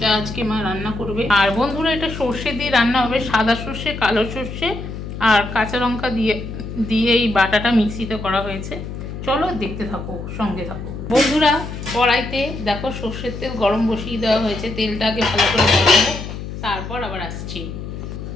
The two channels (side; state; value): left; noise; hum, 8 dB below the sound